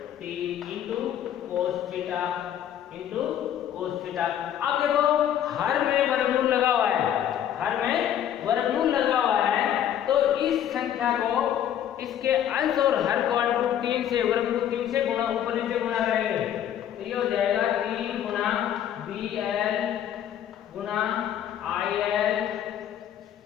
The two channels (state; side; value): quieter; right; 10.3 dB